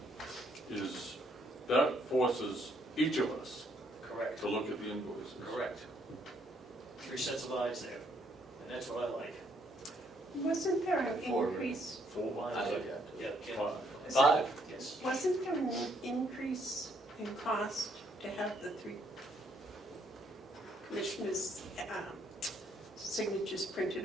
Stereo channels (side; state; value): both; normal; correlation 0.70